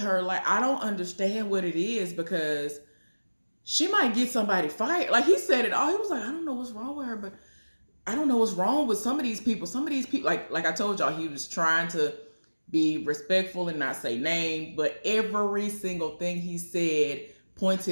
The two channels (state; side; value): inverted; both; correlation -1.00